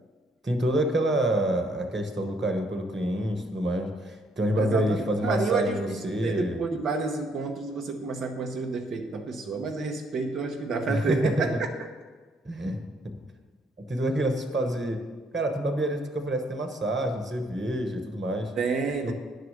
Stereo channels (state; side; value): normal; both; correlation 0.69